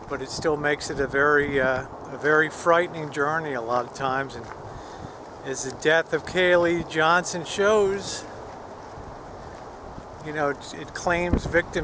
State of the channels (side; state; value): both; identical; correlation 1.00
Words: But it still makes it a very frightening journey a lot of times. And as the death of Kaylee Johnson shows, you know, it claims